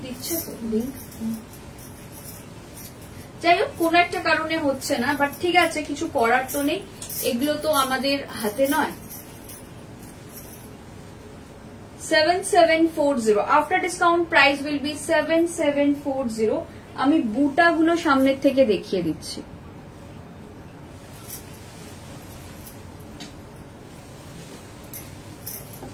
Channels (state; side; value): identical; both; correlation 1.00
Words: দিচ্ছে তো লিংক। যাই হোক কোনো একটা কারণে হচ্ছে না, বাট ঠিক আছে, কিছু করার তো নেই, এগুলো তো আমাদের হাতে নয়। 7740 after discount price will be 7740। আমি বুটাগুলো সামনের থেকে দেখিয়ে দিচ্ছি।